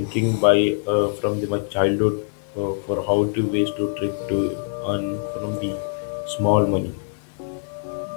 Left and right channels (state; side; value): silent; right; digital silence